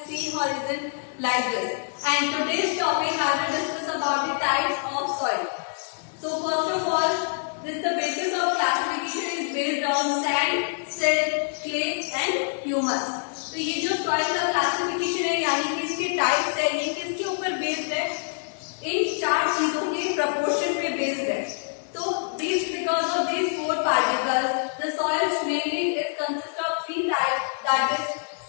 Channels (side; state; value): right; silent; 61 dB below the other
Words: C horizon, like this. And today's topic I will discuss about the types of soil. So first of all, the basis of classification is based on sand, silt, clay and humus. तो ये जो soil का classification है यानी कि इसके types है, ये किसके ऊपर बेस्ड है? इन चार चीजों के प्रपोर्शन पे बेस्ड है. तो this because of this four particles the soils mainly is consist of three types, that is